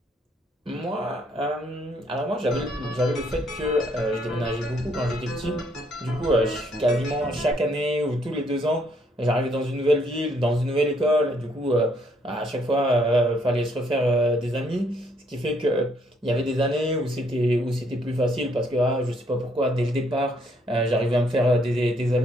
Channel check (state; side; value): normal; both; correlation 0.68